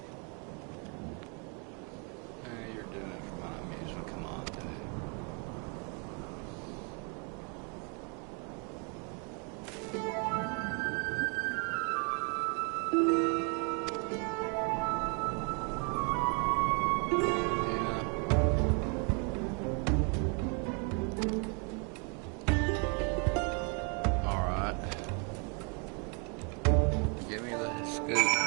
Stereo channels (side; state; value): left; quieter; 36.0 dB